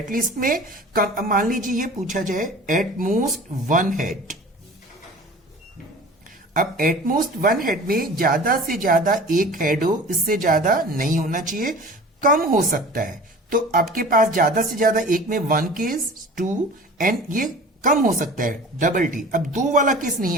में कम. मान लीजिए ये पूछा जाए एट मोस्ट 1 हेड. अब एटमोस्ट 1 हेड में ज्यादा से ज्यादा एक हेड हो, इससे ज्यादा नहीं होना चाहिए, कम हो सकता है. तो आपके पास ज्यादा से ज्यादा एक में 1 केस, 2 एंड ये कम हो सकता है डबल टी. अब 2 वाला केस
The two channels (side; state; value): both; normal; correlation 0.41